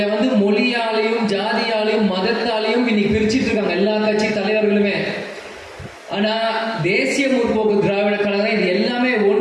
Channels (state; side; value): identical; both; correlation 1.00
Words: வந்து மொழியாலையும் ஜாதியாலையும் மதத்தாலையும் இன்னைக்கு பிரிச்சுட்டு இருக்காங்க எல்லா கட்சி தலைவர்களுமே. ஆனா தேசிய முற்போக்கு திராவிட கழகம் இது எல்லாமே